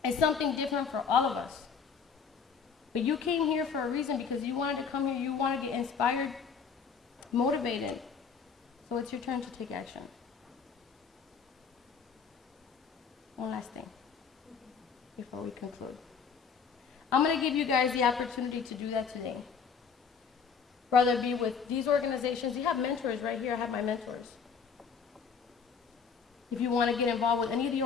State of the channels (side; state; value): right; quieter; 6.2 dB